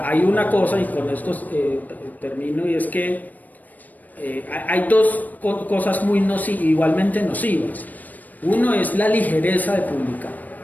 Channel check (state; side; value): late; right; 0.082 ms